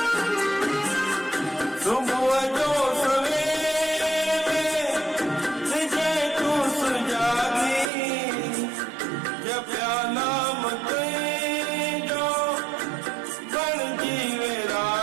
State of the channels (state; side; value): drops out; left; at 7.9 s